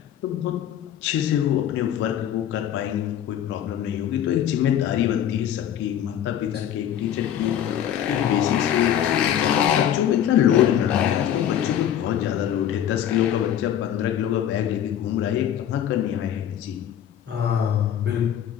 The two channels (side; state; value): right; quieter; 10.2 dB